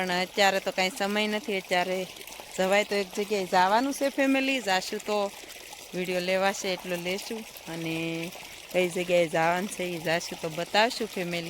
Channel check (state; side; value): identical; both; correlation 1.00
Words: અત્યારે તો કાંઈ સમય નથી। અત્યારે જવાય તો એક જગ્યાએ જવાનું છે ફેમિલી, જાશું તો વિડીયો લેવાશે એટલો લેશું, અને કઈ જગ્યાએ જવાનું છે એ જાશું તો બતાવશું